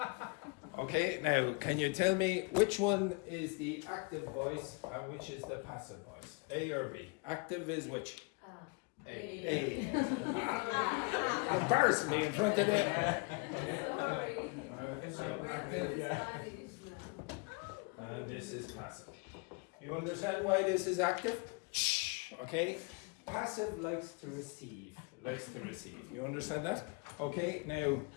Okay, now can you tell me which one is the active voice and which is the passive voice? A or B? Active is which? A. Embarrassing me in front of them. So active. And this is passive. You understand why this is active? Okay. Passive likes to receive. You understand that? Okay. Now,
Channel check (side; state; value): right; quieter; 31.4 dB